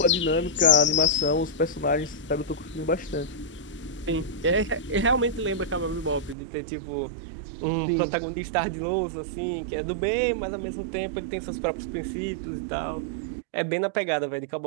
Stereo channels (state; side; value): drops out; left; at 6.4 s